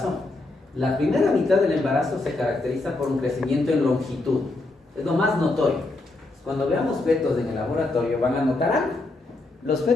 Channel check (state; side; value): quieter; right; 3.0 dB